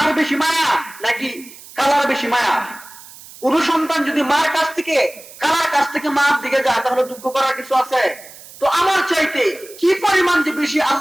বেশি মায়া নাকি কালার বেশি মায়া? কোন সন্তান যদি মার কাছ থেকে কালার কাছ থেকে মার দিকে যায়, তাহলে দুঃখ করার কিছু আছে? তো আমার চাইতে কি পরিমাণ যে বেশি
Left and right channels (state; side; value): noise; right; hiss, 19 dB below the sound